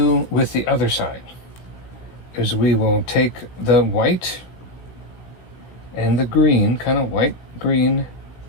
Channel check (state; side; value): late; right; 16 ms